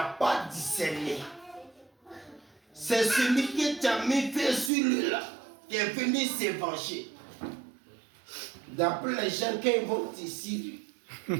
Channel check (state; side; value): drops out; left; at 4.7 s